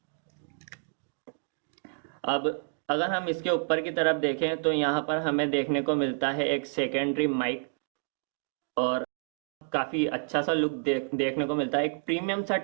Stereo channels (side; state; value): left; silent; digital silence